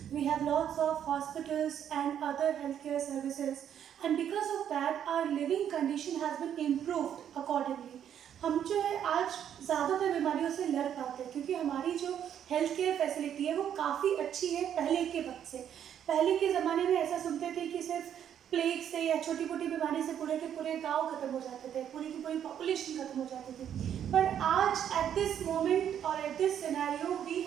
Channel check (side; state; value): left; quieter; 9.5 dB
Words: we have lots of hospitals and other healthcare services, and because of that our living condition has been improved accordingly. हम जो है आज ज़्यादातर बीमारियों से लड़ पाते हैं क्योंकि हमारी जो हेल्थ केयर फैसिलिटी है वो काफ़ी अच्छी है पहले के वक्त से। पहले के ज़माने में ऐसा सुनते थे कि सिर्फ प्लेग से या छोटी मोटी बीमारी से पूरे के पूरे गांव खत्म हो जाते थे, पूरी की पूरी पॉपुलेशन खत्म हो जाती थी। पर आज एट दिस मोमेंट और at this scenario we